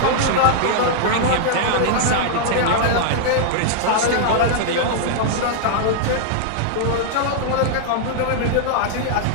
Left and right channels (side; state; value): both; different; correlation -0.01